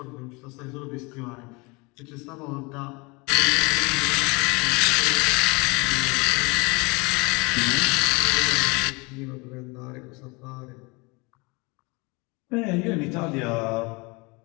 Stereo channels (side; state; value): right; quieter; 27.2 dB